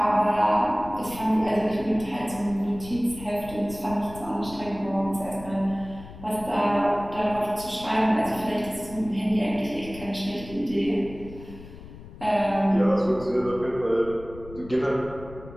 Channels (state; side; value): noise; left; rumble, 16 dB below the sound